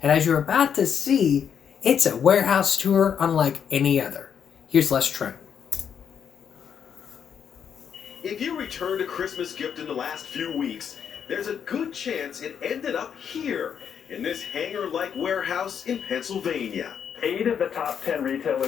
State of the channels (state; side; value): quieter; right; 7.8 dB